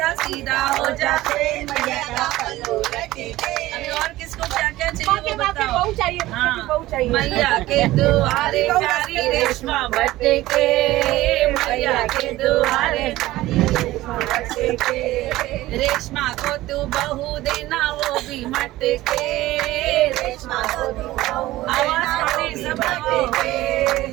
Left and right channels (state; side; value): quieter; left; 16.9 dB